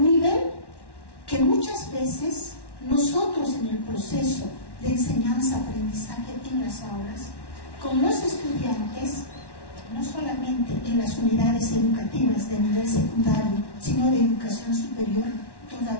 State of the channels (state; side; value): late; right; 1.1 ms